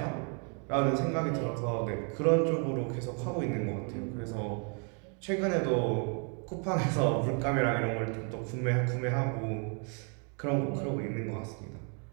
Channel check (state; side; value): quieter; left; 39.1 dB